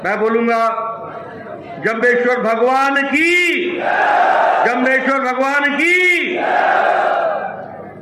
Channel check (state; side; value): identical; both; correlation 1.00